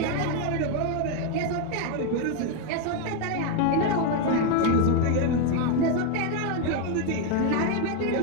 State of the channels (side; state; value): both; different; correlation 0.01